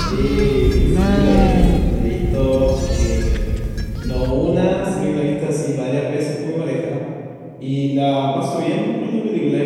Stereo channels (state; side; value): identical; both; correlation 1.00